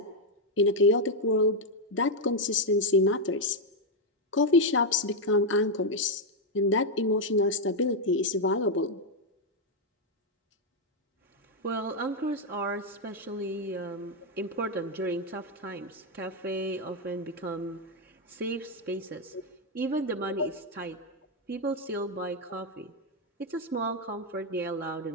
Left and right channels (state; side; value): normal; both; correlation 0.02